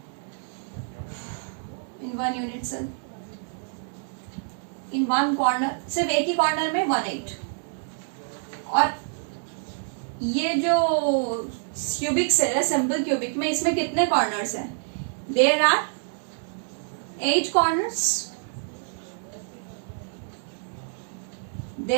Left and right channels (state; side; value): silent; left; digital silence